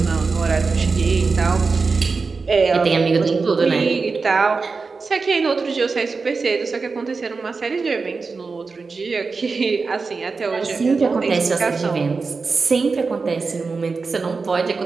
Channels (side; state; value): left; quieter; 4.4 dB